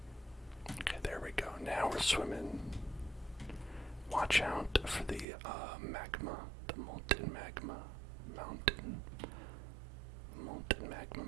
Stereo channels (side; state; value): left; drops out; at 5.2 s